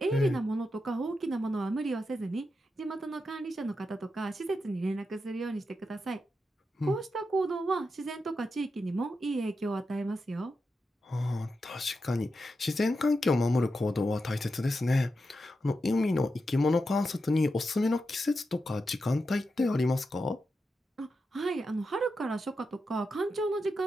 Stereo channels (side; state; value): both; normal; correlation 0.88